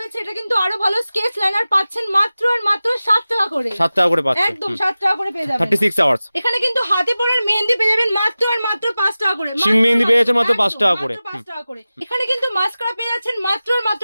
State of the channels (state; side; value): inverted; both; correlation -0.96